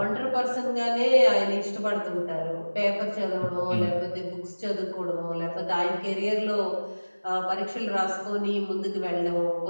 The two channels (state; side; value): inverted; both; correlation -1.00